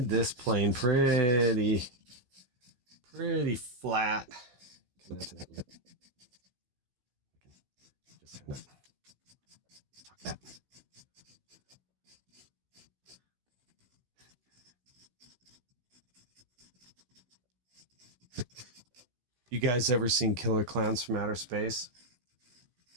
this plane pretty flat. Coming out to that lip. Just kind of tuck that. You guys ever seen Killer Clowns from Outer Space?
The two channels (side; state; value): left; late; 16 ms